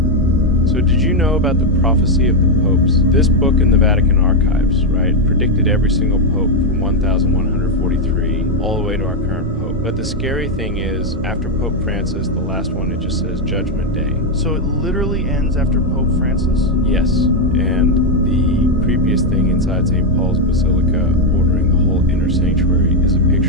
So did you know about the prophecy of the popes? This book in the Vatican archives, right, predicted every single pope from 1143 all the way to our current pope. But the scary thing is, after Pope Francis, the last one, it just says Judgment Day. So it literally ends after Pope Francis? Yes, and the creepiest thing inside St. Paul's Basilica, ordering the whole inner sanctuary, is a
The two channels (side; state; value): both; normal; correlation 0.03